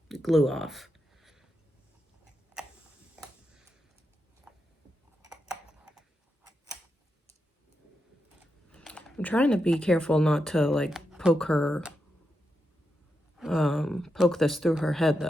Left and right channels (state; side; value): normal; both; correlation 0.86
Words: glue off. I'm trying to be careful not to like poke this through her head